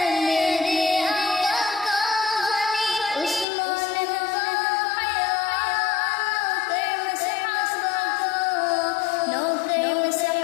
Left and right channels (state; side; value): drops out; right; at 3.5 s